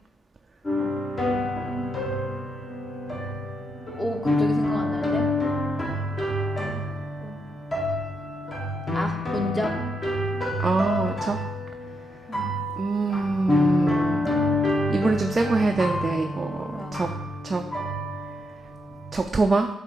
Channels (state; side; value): normal; both; correlation 0.81